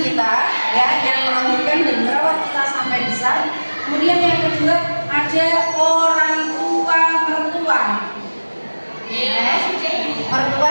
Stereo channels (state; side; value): inverted; both; correlation -1.00